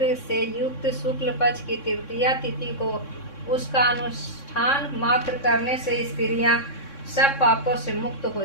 से युक्त शुक्ल पक्ष की तृतीया तिथि को उसका अनुष्ठान मात्र करने से स्त्रियां सब पापों से मुक्त हो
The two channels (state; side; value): late; right; 3.6 ms